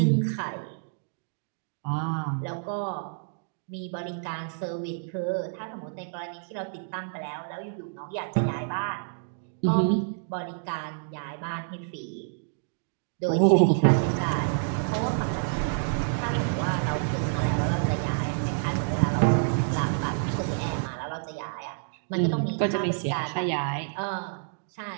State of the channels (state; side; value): silent; left; digital silence